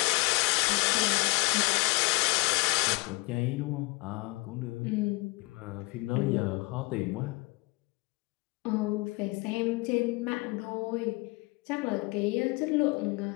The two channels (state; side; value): quieter; right; 25.4 dB